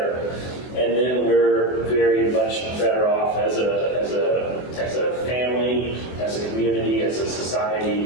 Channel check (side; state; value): right; late; 24 ms